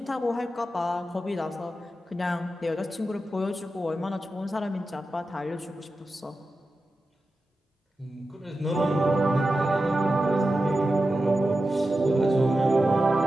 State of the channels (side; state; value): both; normal; correlation 0.92